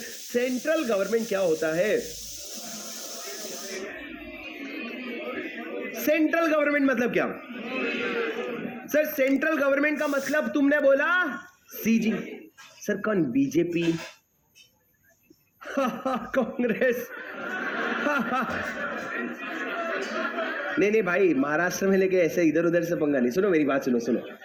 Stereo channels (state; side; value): identical; both; correlation 1.00